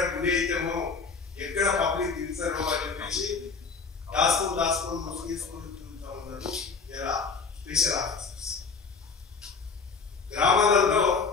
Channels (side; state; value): right; quieter; 5.0 dB